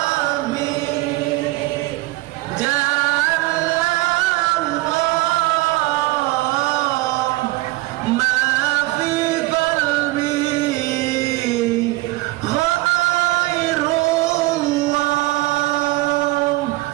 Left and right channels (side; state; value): left; quieter; 20.0 dB